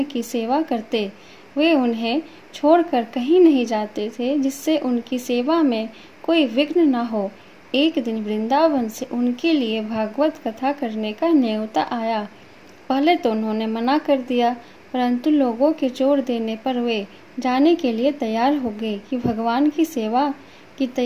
की सेवा करते। वे उन्हें छोड़कर कहीं नहीं जाते थे जिससे उनकी सेवा में कोई विघ्न न हो। एक दिन वृंदावन से उनके लिए भागवत कथा करने का न्योता आया। पहले तो उन्होंने मना कर दिया, परंतु लोगों के जोर देने पर वे जाने के लिए तैयार हो गए कि भगवान की सेवा की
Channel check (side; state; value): both; identical; correlation 1.00